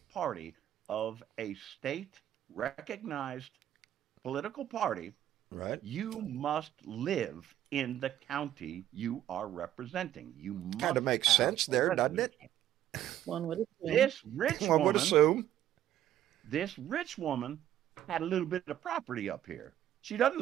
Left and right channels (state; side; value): quieter; left; 12.1 dB